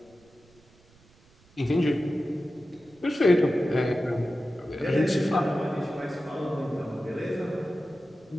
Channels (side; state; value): right; noise; rumble, 29 dB below the sound